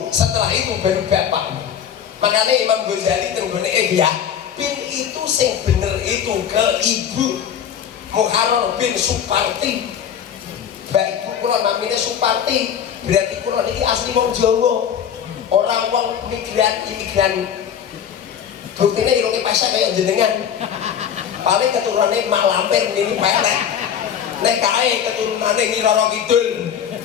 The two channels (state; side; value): quieter; right; 8.6 dB